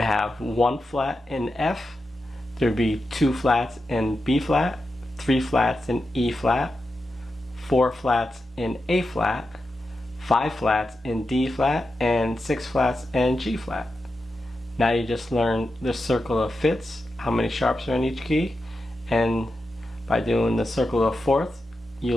1 flat in F, there'd be 2 flats in B flat, 3 flats in E flat, 4 flats in A flat, 5 flats in D flat, and 6 flats in G flat. Now you just learned the circle of fifths, how many sharps are in each key, and by doing the circle of fourths, you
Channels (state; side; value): normal; both; correlation 0.89